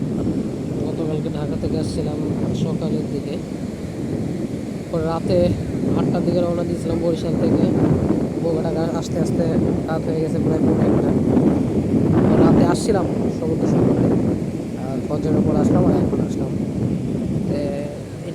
গতকালকে ঢাকা থেকে আসছিলাম সকালের দিকে, পরে রাতে 8টার দিকে রওনা দিয়েছিলাম বরিশাল থেকে। ঢাকা আসতে আসতে রাত হয়ে গেছে প্রায় 1:45। রাতে আসছিলাম সমুদ্র সৈকতে, আর ফজরের পর আসলাম আর এখন আসলাম।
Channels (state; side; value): identical; both; correlation 1.00